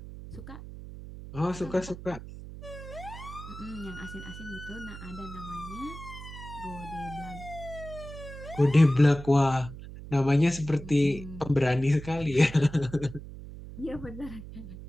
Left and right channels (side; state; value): right; noise; hum, 12 dB below the sound